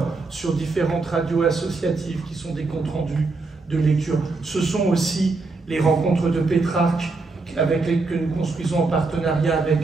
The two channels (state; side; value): quieter; left; 3.7 dB